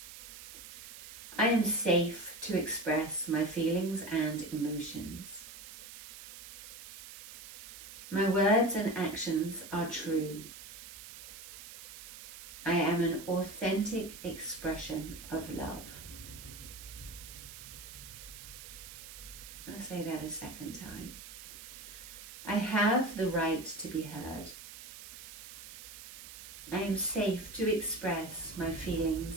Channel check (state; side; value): noise; right; hiss, 14 dB below the sound